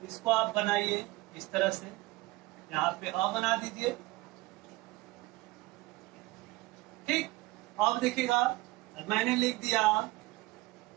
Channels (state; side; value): quieter; left; 20.3 dB